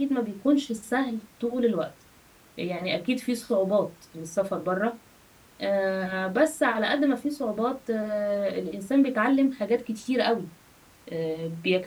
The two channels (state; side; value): identical; both; correlation 1.00